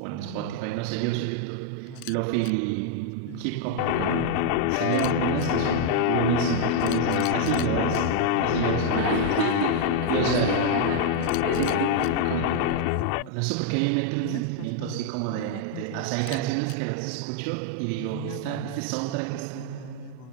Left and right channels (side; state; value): both; different; correlation 0.00